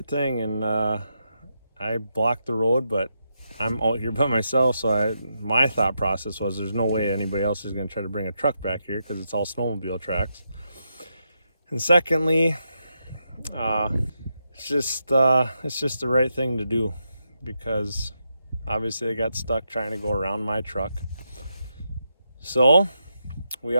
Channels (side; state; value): both; inverted; correlation -0.83